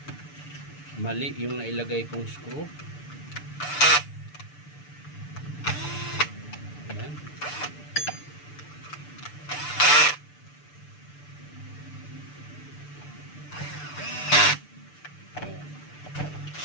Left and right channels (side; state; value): right; late; 6.8 ms